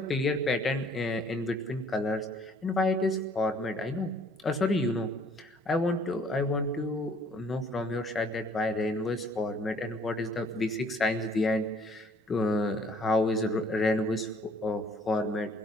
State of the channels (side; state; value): both; normal; correlation 0.59